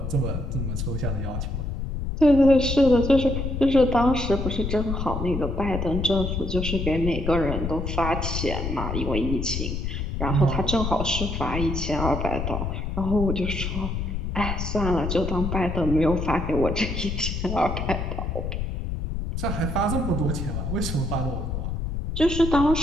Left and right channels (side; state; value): left; noise; rumble, 3 dB below the sound